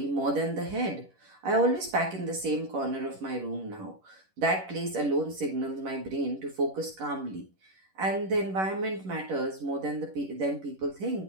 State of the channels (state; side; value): late; left; 11 ms